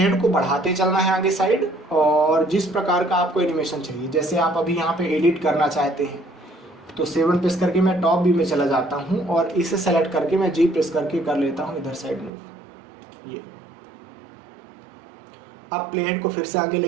को बढ़ाते चलना है आगे साइड, और जिस प्रकार का आपको एनिमेशन चाहिए, जैसे आप अभी यहाँ पे एडिट करना चाहते हैं तो 7 प्रेस करके मैं टॉप व्यू में चला जाता हूँ और इसे सेलेक्ट करके मैं जी प्रेस करके कर लेता हूँ इधर साइड मूव। ये अब प्लेट को फिर से आगे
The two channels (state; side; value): drops out; left; at 12.3 s